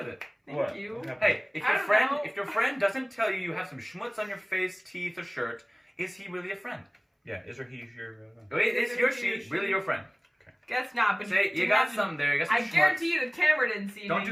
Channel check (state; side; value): identical; both; correlation 1.00